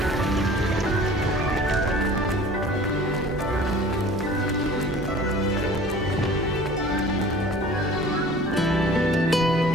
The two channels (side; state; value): both; normal; correlation 0.46